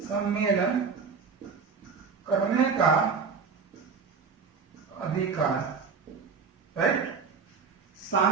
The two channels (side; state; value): left; quieter; 5.4 dB